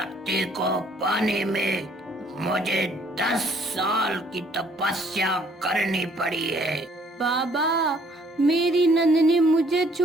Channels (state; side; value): normal; both; correlation 0.62